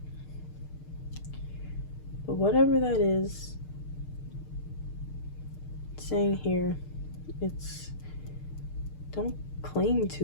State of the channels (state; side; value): late; right; 6.6 ms